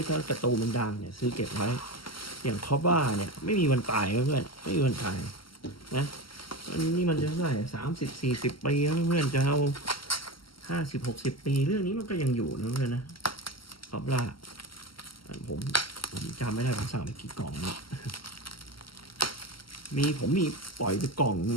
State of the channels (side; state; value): right; late; 0.74 ms